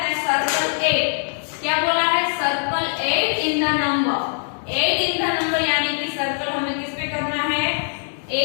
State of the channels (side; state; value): right; silent; digital silence